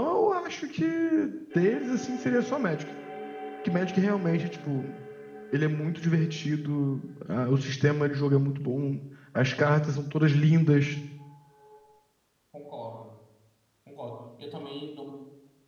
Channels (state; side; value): identical; both; correlation 1.00